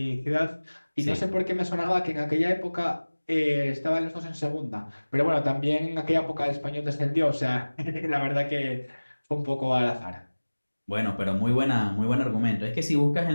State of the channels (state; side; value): inverted; both; correlation -1.00